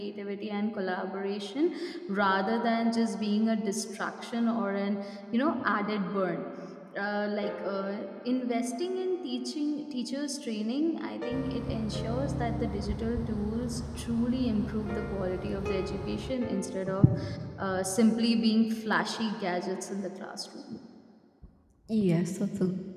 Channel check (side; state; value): both; identical; correlation 1.00